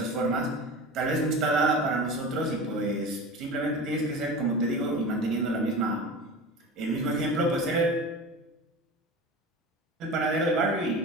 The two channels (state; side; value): normal; both; correlation 0.32